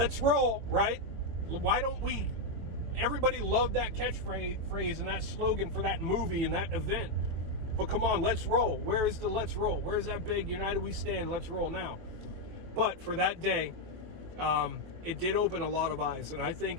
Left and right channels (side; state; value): left; late; 23 ms